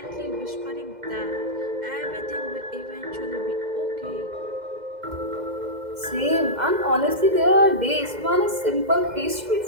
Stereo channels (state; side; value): late; left; 2.1 ms